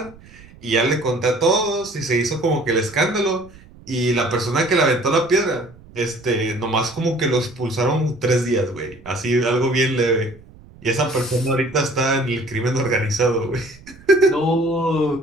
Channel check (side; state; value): right; noise; rumble, 23 dB below the sound